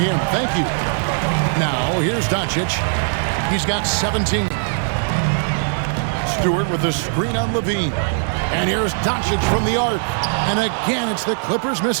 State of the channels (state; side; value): silent; left; 66 dB below the other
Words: him. Thank you. Now, here's Doncic. He's got 17. Stewart with the screen on Levine. And here's Doncic from the arc. And again, it's the Clippers